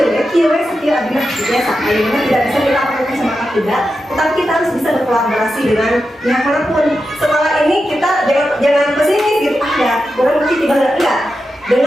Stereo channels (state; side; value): normal; both; correlation 0.89